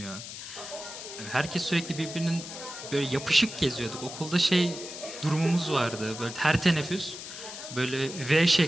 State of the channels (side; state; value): left; noise; hiss, 10 dB below the sound